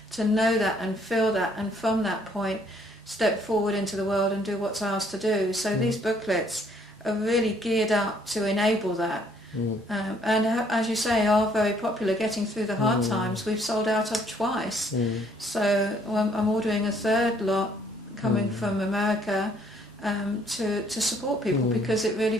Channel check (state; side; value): normal; both; correlation 0.64